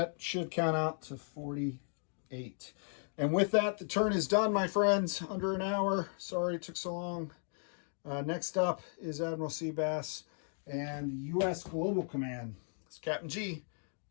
should count out to 48. And with that, the turn is done, my friends. Under an hour. Sorry it took so long. Next up is Admiral Seabass and U.S. Global Command. It's Captain G,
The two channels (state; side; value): silent; right; 54 dB below the other